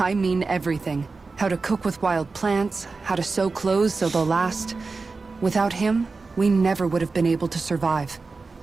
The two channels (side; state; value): left; quieter; 4.1 dB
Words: mean everything. How to cook with wild plants, how to sew clothes so they'll last. Without him, we never would have been able to survive.